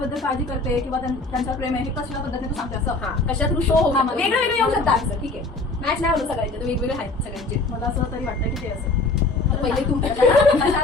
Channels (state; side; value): quieter; right; 3.4 dB